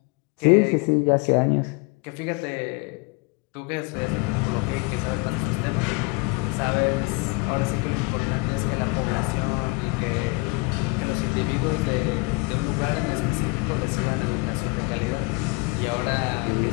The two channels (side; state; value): right; quieter; 27.3 dB